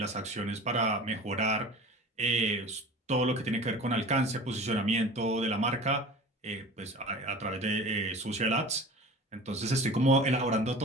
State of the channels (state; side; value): normal; both; correlation 0.39